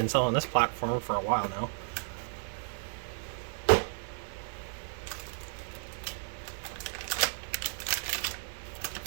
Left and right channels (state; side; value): silent; left; digital silence